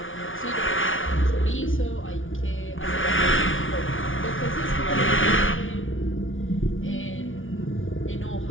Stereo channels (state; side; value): late; right; 0.57 ms